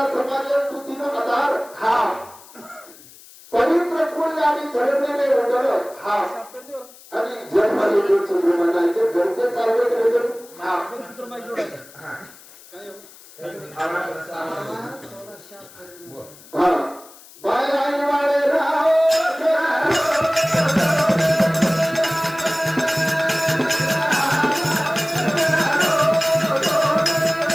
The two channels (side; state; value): left; noise; hiss, 22 dB below the sound